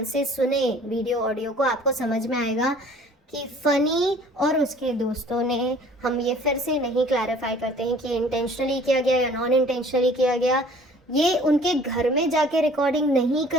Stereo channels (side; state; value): both; normal; correlation 0.52